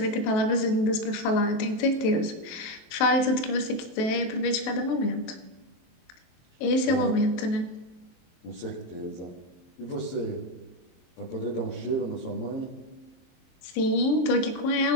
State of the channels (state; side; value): late; right; 23 ms